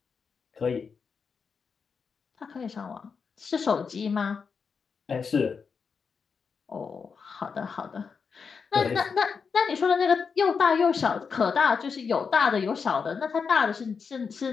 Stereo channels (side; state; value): right; quieter; 5.7 dB